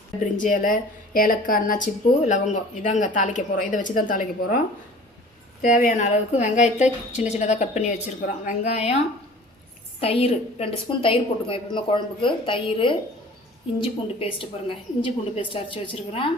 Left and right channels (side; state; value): both; normal; correlation 0.45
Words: பிரிஞ்சி இலை, ஏலக்காய், அன்னாச்சிப்பூ, லவங்கம் இதாங்க தாளிக்க போகிறோம். இதை வச்சு தான் தாளிக்க போகிறோம். தேவையான அளவுக்கு வெங்காயத்தை சின்ன சின்னதாக கட் பண்ணி வச்சுருக்குறோம். வெங்காயம், தயிர் 2 ஸ்பூன் தயிர் போட்டுக்கோங்க. எப்பவுமே குழம்புக்கு தயிர், இஞ்சி பூண்டு பேஸ்ட்டு பாருங்கள், இஞ்சி பூண்டு பேஸ்ட்டு அரைச்சி வச்சுருக்குறேன்.